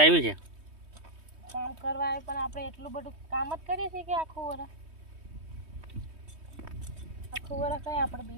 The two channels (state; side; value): late; left; 3.2 ms